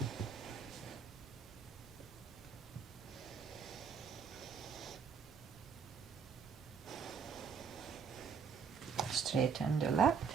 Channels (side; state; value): left; quieter; 6.3 dB